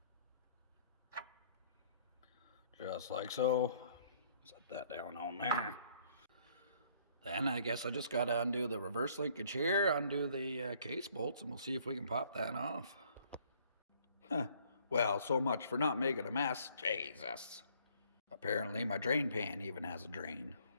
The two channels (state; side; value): inverted; both; correlation -0.62